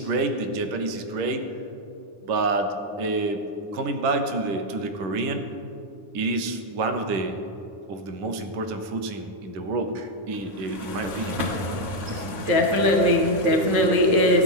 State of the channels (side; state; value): left; late; 10 ms